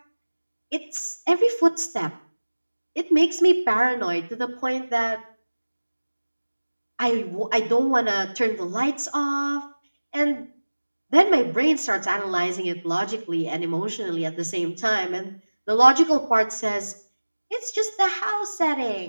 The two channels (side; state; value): both; inverted; correlation -1.00